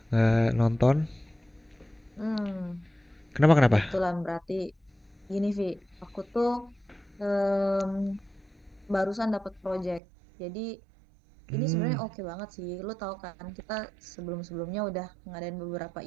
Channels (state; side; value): drops out; left; at 10.0 s